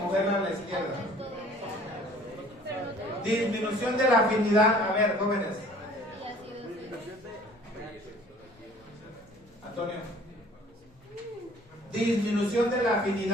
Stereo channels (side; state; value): both; normal; correlation 0.52